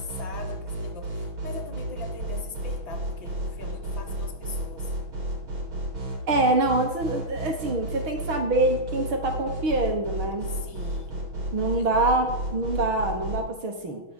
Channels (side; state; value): left; late; 6.4 ms